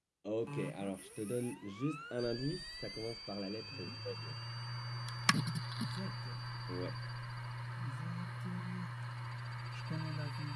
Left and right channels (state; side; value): identical; both; correlation 1.00